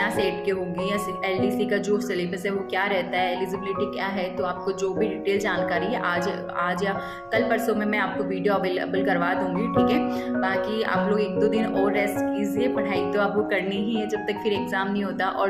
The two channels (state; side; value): identical; both; correlation 1.00